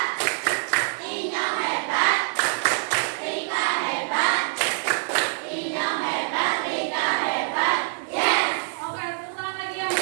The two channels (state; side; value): silent; left; digital silence